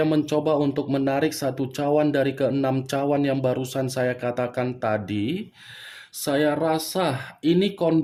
mencoba untuk menarik satu cawan dari ke-6 cawan yang barusan saya katakan tadi, saya rasa ini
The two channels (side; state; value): both; identical; correlation 1.00